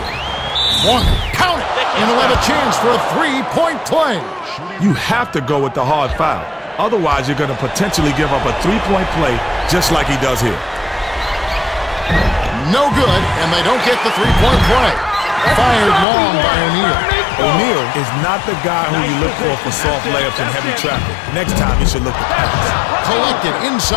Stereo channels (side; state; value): right; drops out; at 16.1 s